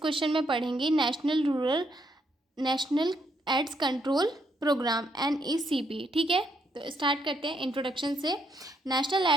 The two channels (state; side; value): normal; both; correlation 0.75